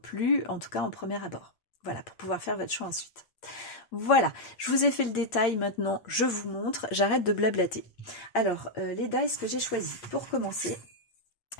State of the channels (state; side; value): late; right; 8.7 ms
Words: en tout cas en premier abord. Voilà, pour pouvoir faire votre choix ensuite. Voilà, je vous ai fait le détail, maintenant je vous montre, j'arrête de blablater. Alors, les dies que j'ai choisis, pour commencer,